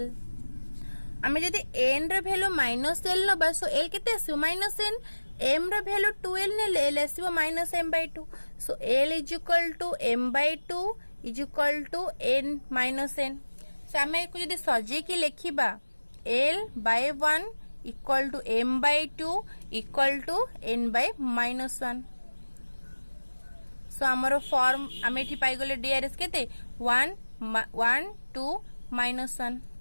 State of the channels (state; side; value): inverted; both; correlation -1.00